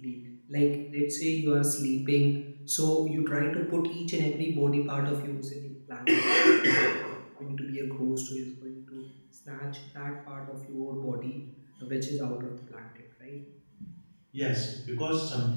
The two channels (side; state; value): both; inverted; correlation -1.00